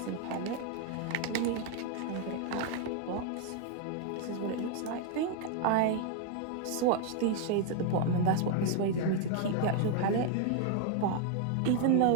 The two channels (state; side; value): different; both; correlation 0.00